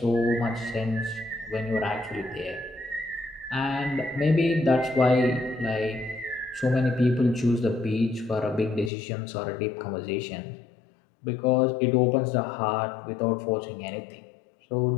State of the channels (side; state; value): right; drops out; at 8.9 s